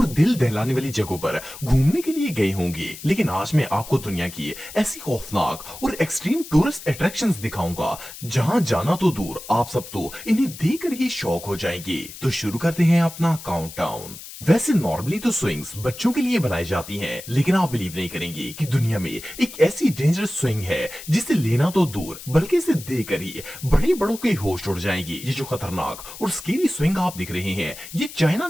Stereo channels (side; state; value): left; noise; hiss, 14 dB below the sound